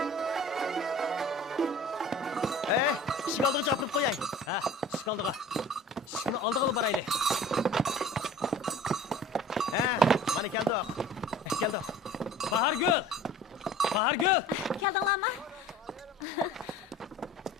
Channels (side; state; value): both; normal; correlation 0.44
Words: Işık aldığı çapırıp koyay. Ha, şıkaldığa. Şıkını aldığı baraylı. Mana keldi. Keldi. Bahargül! Bahargül! Keldinglarmi?